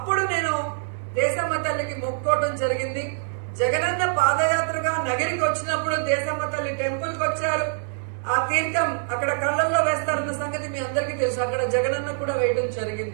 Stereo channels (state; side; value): silent; left; digital silence